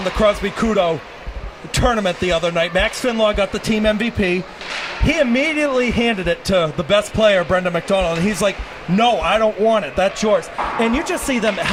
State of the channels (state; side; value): identical; both; correlation 1.00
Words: the Crosby Kudo tournament the other night, Max Finlaw got the team MVP. He immediately handed it to the best player, Brendan McDonald, and he's like, no, I don't want it. That's yours. And you just see them